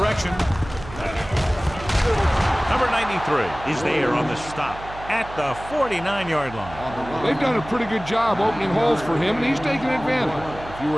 Number 93 is there on the stop at the 49-yard line. They've done a pretty good job opening holes for him, and he's taking advantage. If you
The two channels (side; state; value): right; noise; hum, 14 dB below the sound